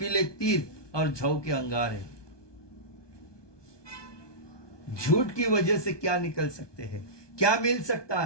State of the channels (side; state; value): right; late; 1.2 ms